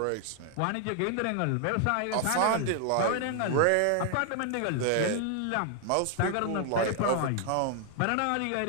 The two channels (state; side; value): different; both; correlation 0.00